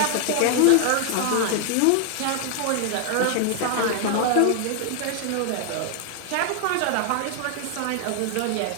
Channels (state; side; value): different; both; correlation 0.00